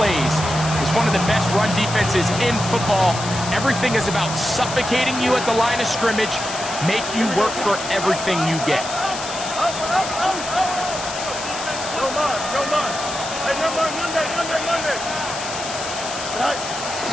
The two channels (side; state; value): left; noise; hiss, 8 dB below the sound